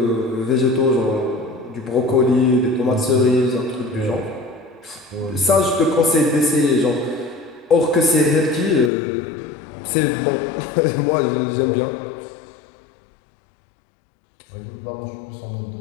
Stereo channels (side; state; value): right; drops out; at 8.9 s